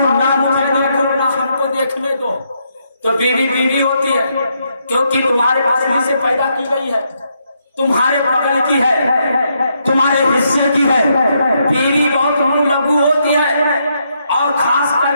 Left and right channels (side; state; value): both; inverted; correlation -0.78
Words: ना मुझे देखो, ना हमको देखने दो। तो बीवी बीवी होती है, क्योंकि तुम्हारे पास में से पैदा की गई है, तुम्हारे बगल की है, तुम्हारे हिस्से की है। बीवी बहुत लघु होती है, और खास